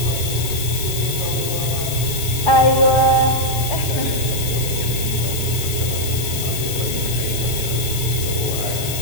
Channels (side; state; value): left; noise; hiss, 5 dB below the sound